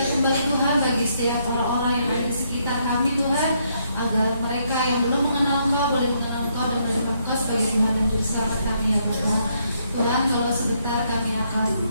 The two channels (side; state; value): both; inverted; correlation -0.74